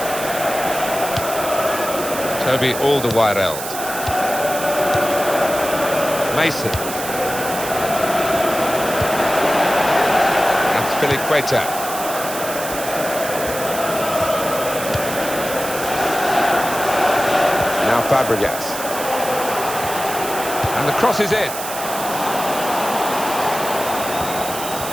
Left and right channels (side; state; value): right; noise; hiss, 8 dB below the sound